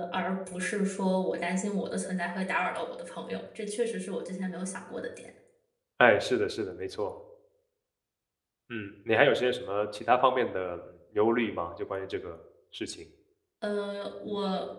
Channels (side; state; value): both; identical; correlation 1.00